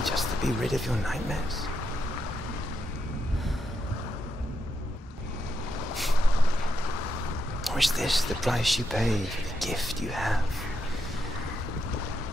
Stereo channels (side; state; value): both; normal; correlation 0.82